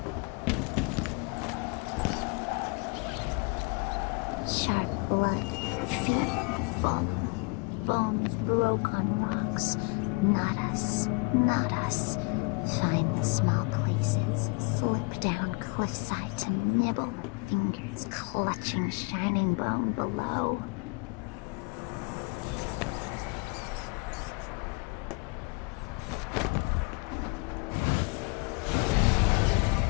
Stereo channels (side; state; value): right; quieter; 29.9 dB